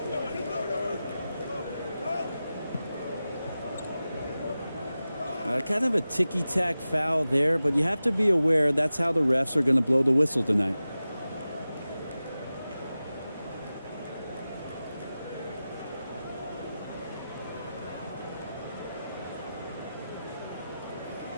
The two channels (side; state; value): both; inverted; correlation -0.94